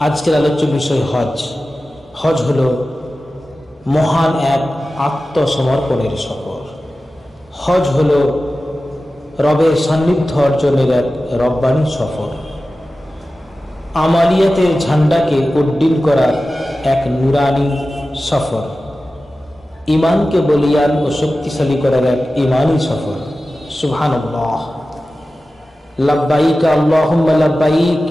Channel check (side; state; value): both; normal; correlation 0.95